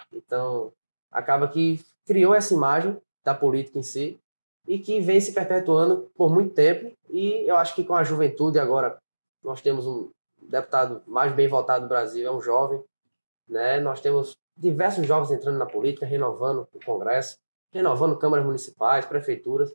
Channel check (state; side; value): inverted; both; correlation -1.00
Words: Então, acaba que criou essa imagem da política em si e que vem se perpetuando por muito tempo. E eu acho que com a juventude agora, nós temos um deputado mais bem votado do Brasil, é um jovem. Né? Nós temos diversos jovens entrando na política, renovando o Congresso, renovando câmaras municipais, prefeituras.